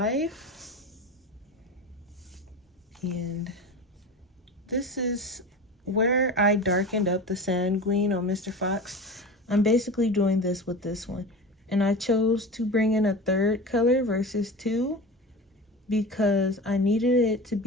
And this is where I darkened up the sanguine on Mr. Fox. I'm basically doing this with this one. And I chose to bring in a 3rd color versus 2 because I needed it to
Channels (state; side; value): normal; both; correlation 0.31